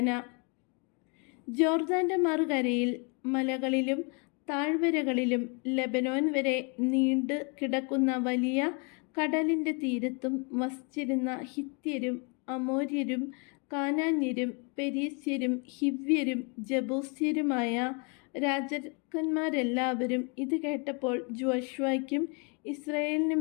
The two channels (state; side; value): quieter; right; 34.1 dB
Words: ജോർദാന്റെ മറുകരയിൽ മലകളിലും താഴ്വരകളിലും ലെബനോൻ വരെ നീണ്ടു കിടക്കുന്ന വലിയ കടലിൻ്റെ തീരത്തും വസിച്ചിരുന്ന ഹിത്യരും അമോര്യരും കാനാന്യരും പെരീസ്യരും ഹിവ്യരും ജബൂസ്യരുമായ രാജാക്കന്മാരെല്ലാവരും ഇത് കേട്ടപ്പോൾ ജോഷുവയ്ക്കും